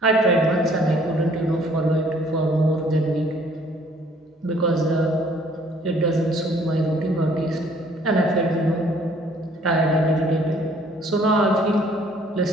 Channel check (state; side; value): normal; both; correlation 0.59